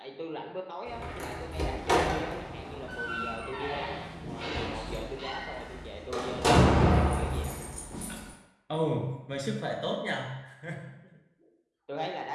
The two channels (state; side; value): identical; both; correlation 1.00